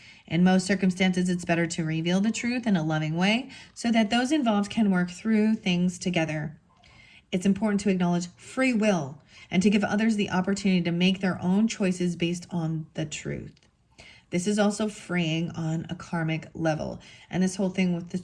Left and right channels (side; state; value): both; identical; correlation 1.00